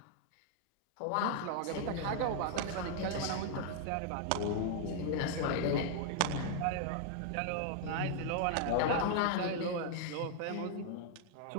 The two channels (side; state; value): both; different; correlation 0.00